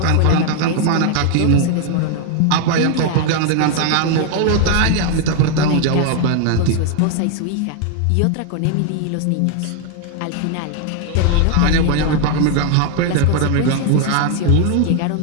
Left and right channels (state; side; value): different; both; correlation 0.00